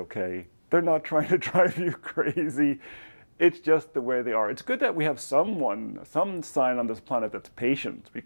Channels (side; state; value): both; inverted; correlation -1.00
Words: They're not trying to drive you crazy. It's just the way they are. It's good that we have some sign on this planet that's patient